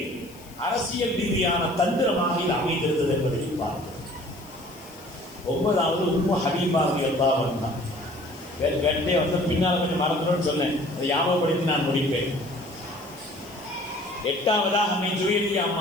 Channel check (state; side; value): noise; left; hiss, 22 dB below the sound